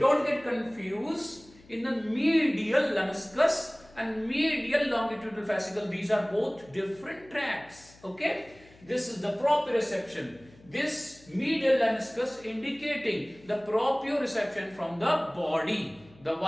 get confused in the medial lemniscus and medial longitudinal fascicle. These are both different tracts. Okay, this is the proprioception. This medial lemniscus indicating the proprioception from the body, the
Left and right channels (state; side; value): noise; left; hum, 25 dB below the sound